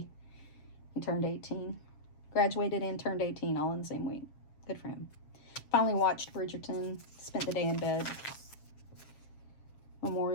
He turned 18. Graduated and turned 18 all in the same week. Good for him. Finally watched Bridgerton. Spent the day in bed.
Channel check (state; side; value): late; right; 7.4 ms